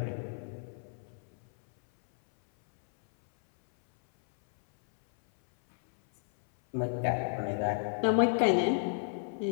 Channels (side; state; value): right; silent; 57 dB below the other